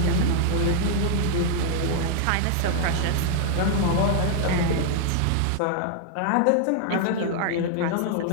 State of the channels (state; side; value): different; both; correlation 0.00